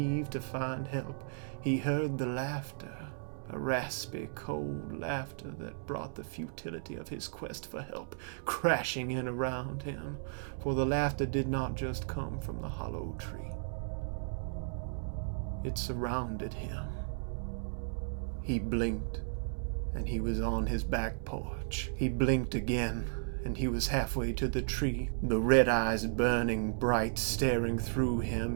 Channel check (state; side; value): silent; left; digital silence